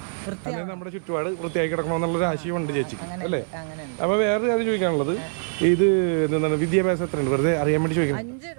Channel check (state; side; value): silent; left; 63 dB below the other